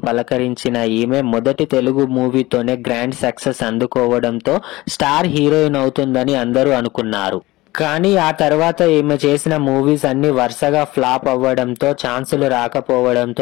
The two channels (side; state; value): right; quieter; 19.5 dB